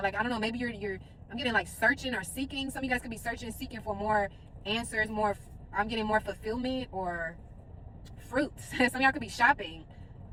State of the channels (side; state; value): both; identical; correlation 1.00